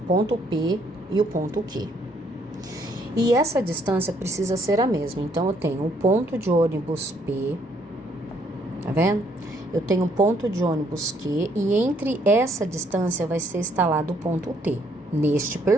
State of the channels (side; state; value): both; normal; correlation 0.68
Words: P e o ponto Q. E essa distância precisa ser a mesma. Então, eu tenho o ponto de ônibus P, tá vendo? Eu tenho um ponto de ônibus Q e entre essa distância vai ser instalado o ponto T, neste